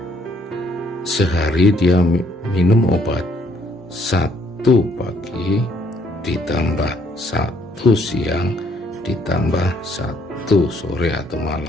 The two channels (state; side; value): normal; both; correlation 0.66